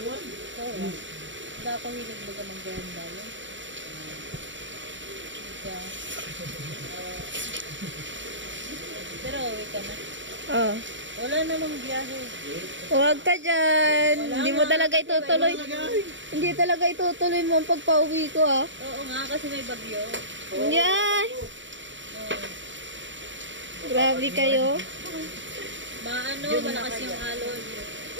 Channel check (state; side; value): late; left; 0.54 ms